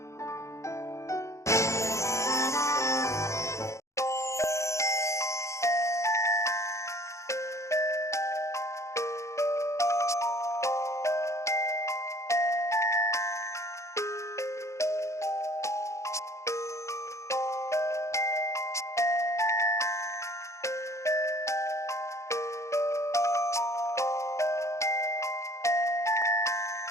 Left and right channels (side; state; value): right; late; 0.14 ms